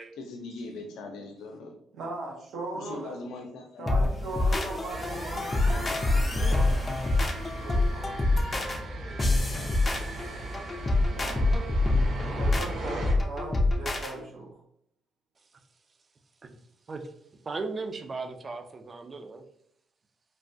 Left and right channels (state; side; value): normal; both; correlation 0.88